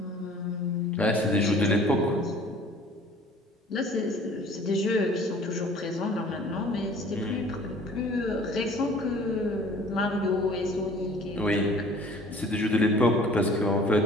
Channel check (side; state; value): both; normal; correlation 0.50